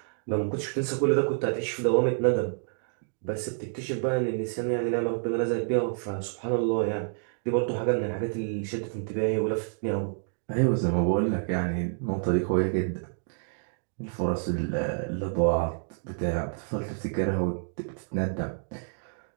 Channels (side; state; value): left; silent; digital silence